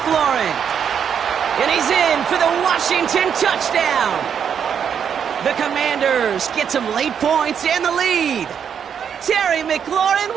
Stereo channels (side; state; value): left; quieter; 7.8 dB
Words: And he's in for the Washington touchdown. The Commanders get some late points and the lead. Terry McLaurin